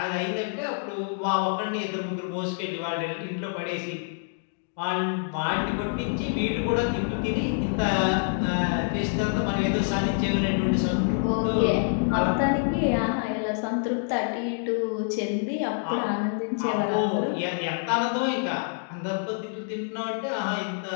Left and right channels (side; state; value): right; silent; digital silence